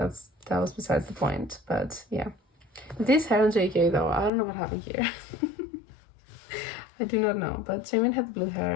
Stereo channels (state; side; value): drops out; right; at 4.3 s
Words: was besides the point. But yeah, this hair on JK though, I don't know what happened here. I do not know, but Jamin had blue